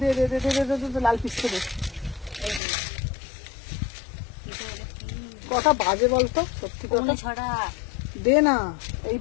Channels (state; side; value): drops out; right; at 2.6 s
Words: দে দে দে দে দে দে, লাল পিসটা দে। কটা বাজে বলতো? সত্যি কথা ছড়া দে না, এই